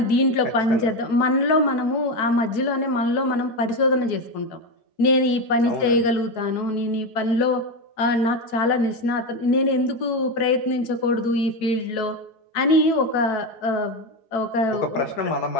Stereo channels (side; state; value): right; late; 4.7 ms